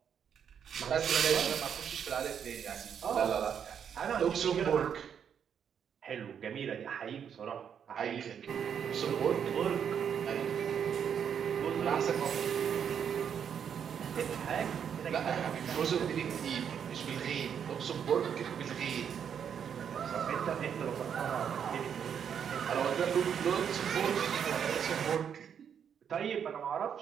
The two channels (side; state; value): left; quieter; 8.0 dB